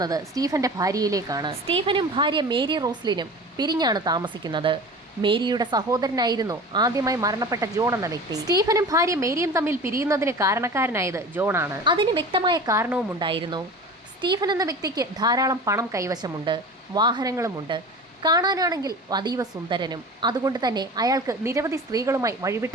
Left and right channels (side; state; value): both; normal; correlation 0.36